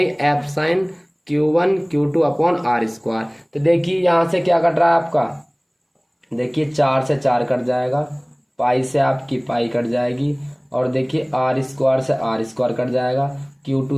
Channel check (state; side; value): identical; both; correlation 1.00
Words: Q1 Q2 upon R square. तो देखिए यहाँ से क्या कट रहा है आपका, देखिए 4 से 4 कट जाएगा, पाई से आपकी पाई कट जाएगी, और देखिए आर स्क्वायर से आर स्क्वायर कट जाएगा,